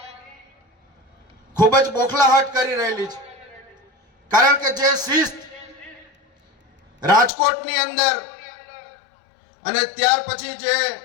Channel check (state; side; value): drops out; right; at 7.3 s